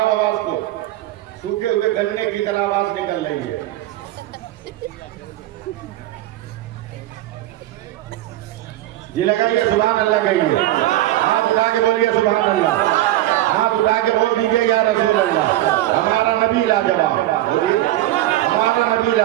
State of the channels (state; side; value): quieter; left; 15.1 dB